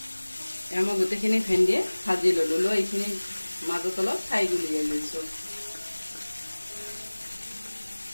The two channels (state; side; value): inverted; both; correlation -1.00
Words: মই গোটেইখিনি ভেন্দিয়ে ভাজি ল'লোঁ লৈ এইখিনি মাজত অলপ ঠাই উলিয়াই লৈছোঁ